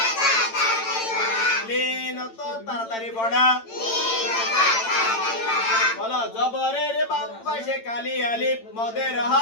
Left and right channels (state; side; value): late; right; 8.9 ms